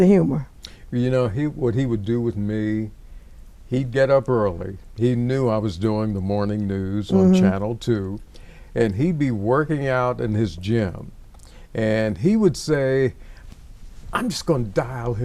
humor. You know, what he would do with me, he'd get up early. He knew I was doing the morning news on Channel 2, and he'd be working out in his gym. And he would say, I'm just going to dial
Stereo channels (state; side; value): identical; both; correlation 1.00